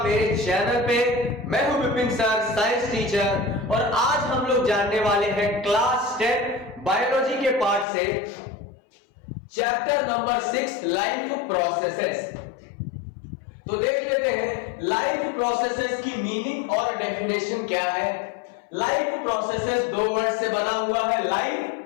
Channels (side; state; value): right; drops out; at 7.9 s